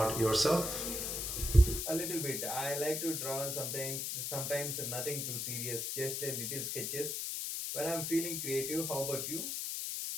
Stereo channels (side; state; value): left; noise; hiss, 2 dB below the sound